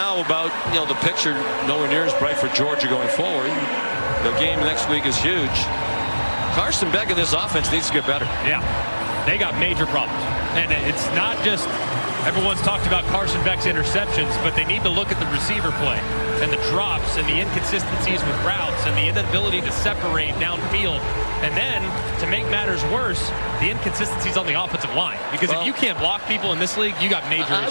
about, the picture nowhere near as bright for Georgia going forward. The game next week is huge. Carson Beck in this offense needs to get better. Yeah, they got major problems. And it's not just everyone's talked about Carson Beck's interceptions, but they need to look at the receiver play and the drops and the inconsistencies with routes and the inability to separate downfield. And then, to make matters worse, the inconsistencies on the offensive line. Because if you can't block people in this league, you got major issues.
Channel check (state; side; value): inverted; both; correlation -1.00